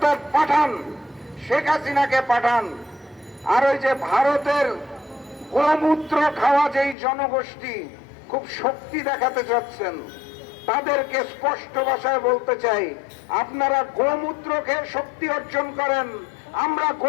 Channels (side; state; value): right; drops out; at 7.0 s